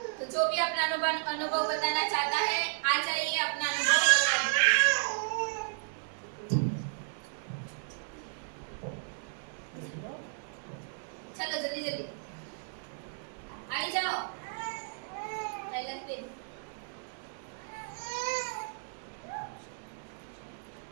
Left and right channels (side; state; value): left; silent; digital silence